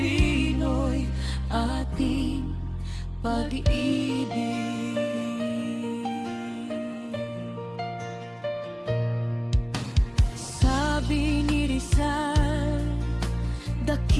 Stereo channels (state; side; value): identical; both; correlation 1.00